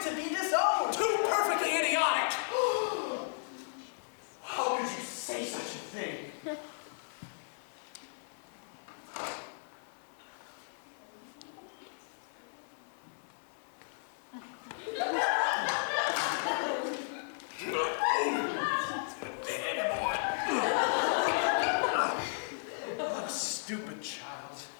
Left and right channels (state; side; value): silent; right; 55 dB below the other